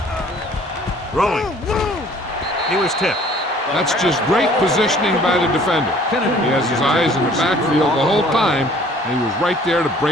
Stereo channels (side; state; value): both; normal; correlation 0.54